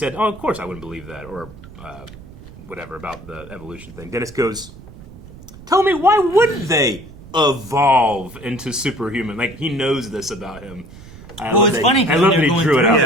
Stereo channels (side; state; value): right; noise; rumble, 18 dB below the sound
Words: "Oh, of course I wouldn't believe that," or whatever about the evolution thing. Dennis goes, "Tell me, why wouldn't they evolve into superhuman?" Like, he knows this about him. It's funny. I love that he drew it out.